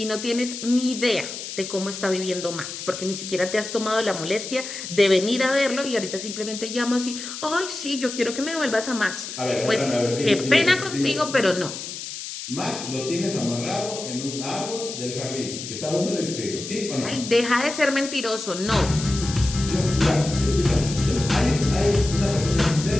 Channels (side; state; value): left; noise; hiss, 8 dB below the sound